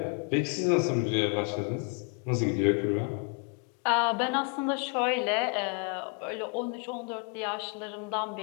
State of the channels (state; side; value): quieter; right; 36.9 dB